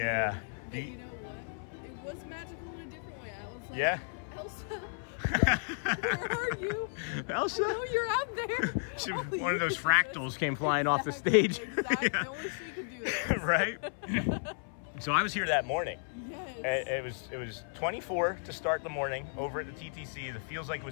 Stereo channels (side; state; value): right; silent; 55 dB below the other